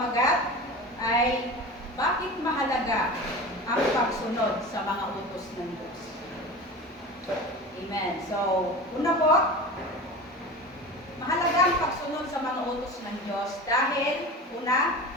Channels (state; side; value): normal; both; correlation 0.32